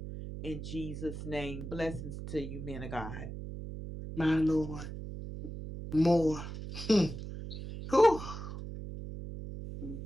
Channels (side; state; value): right; noise; hum, 8 dB below the sound